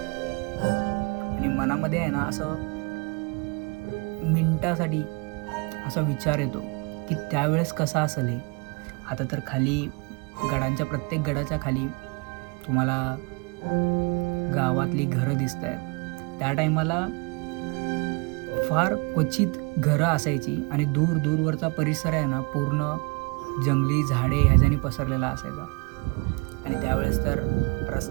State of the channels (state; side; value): quieter; left; 30.6 dB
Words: आणि मनामध्ये आहे ना असं मिनिटासाठी असा विचार येतो की त्यावेळेस कसं असेल हे. आता तर खाली गडांच्या प्रत्येक गडाच्या खाली तुम्हाला गावातली घरं दिसत आहेत. त्या टायमाला फार क्वचित घरं असायची आणि दूरवरचा परिसर आहे ना पूर्ण जंगली झाडे ह्याच्याने पसरलेला असायचा. आणि त्यावेळेस तर